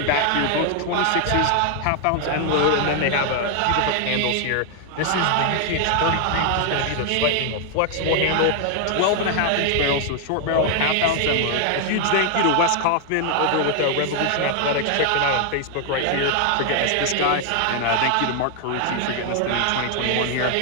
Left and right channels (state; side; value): different; both; correlation 0.00